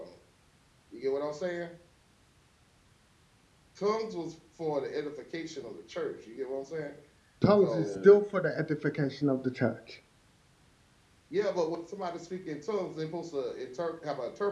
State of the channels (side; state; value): both; identical; correlation 1.00